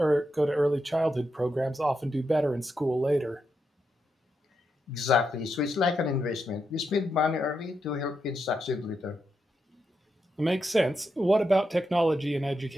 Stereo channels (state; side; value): normal; both; correlation 0.84